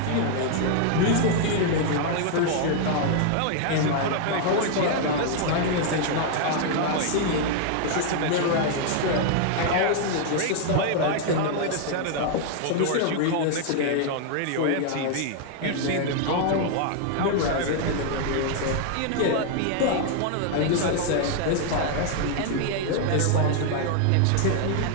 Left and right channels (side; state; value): both; different; correlation 0.00